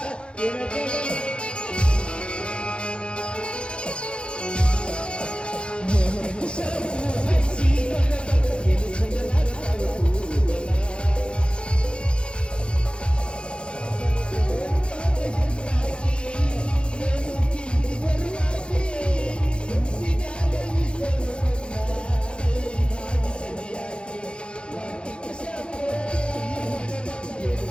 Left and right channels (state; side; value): late; right; 0.055 ms